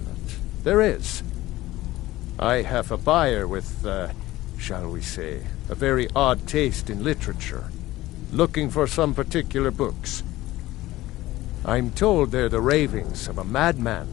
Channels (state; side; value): quieter; right; 16.9 dB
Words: it, there is. I have a buyer with, shall we say, a very odd taste in literature, looking for some particular books. I'm told they're the ravings of a madman,